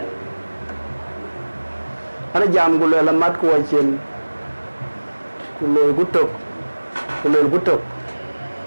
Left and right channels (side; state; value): both; inverted; correlation -1.00